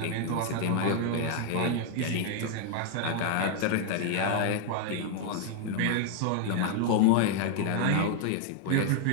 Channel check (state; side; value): different; both; correlation 0.00